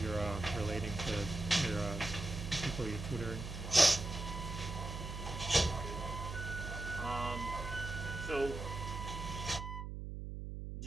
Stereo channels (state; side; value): noise; right; hum, 6 dB below the sound